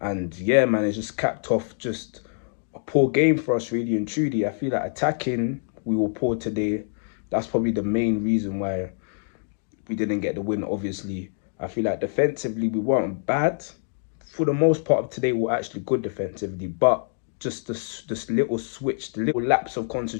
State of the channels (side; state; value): right; silent; digital silence